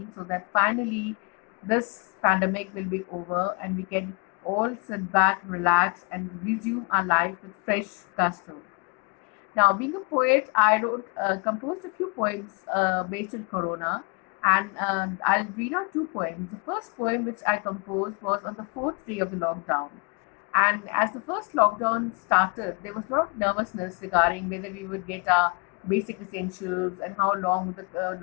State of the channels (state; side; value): quieter; right; 32.4 dB